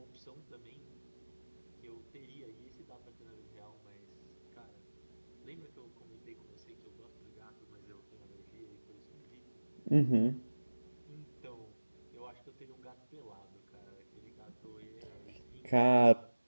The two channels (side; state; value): both; inverted; correlation -1.00